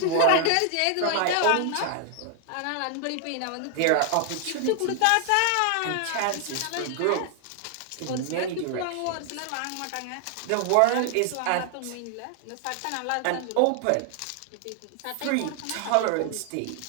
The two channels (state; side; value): different; both; correlation 0.00